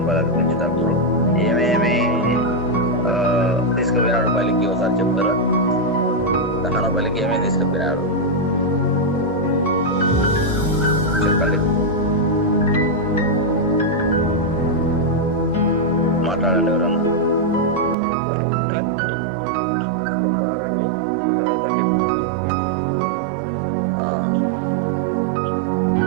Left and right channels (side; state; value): left; drops out; at 17.9 s